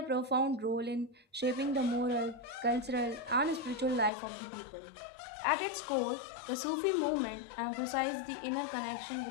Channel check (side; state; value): right; drops out; at 4.1 s